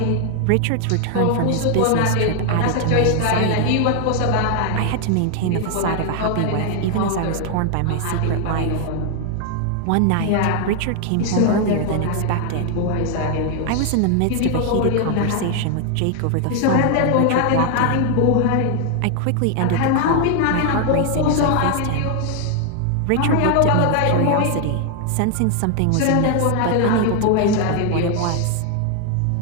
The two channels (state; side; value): different; both; correlation 0.00